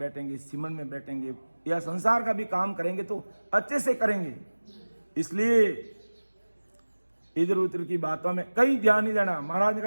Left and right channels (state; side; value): inverted; both; correlation -1.00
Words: सिमरन में बैठेंगे, या संसार का भी काम करेंगे तो अच्छे से करेंगे। इसलिए इधर उधर की बातों में कहीं ध्यान नहीं देना। महाराज ने